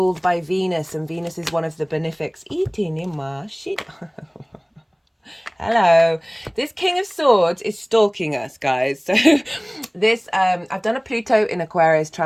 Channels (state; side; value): identical; both; correlation 1.00